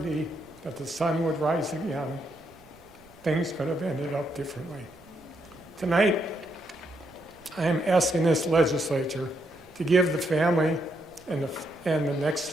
that the sun would rise again, things could have ended up differently. Tonight, I am asking this legislature to give the family and the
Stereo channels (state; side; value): noise; right; rumble, 26 dB below the sound